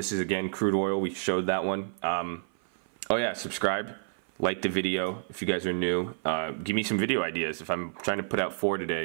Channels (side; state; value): left; silent; 55 dB below the other